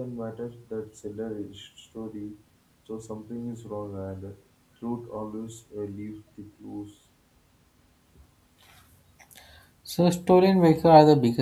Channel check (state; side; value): identical; both; correlation 1.00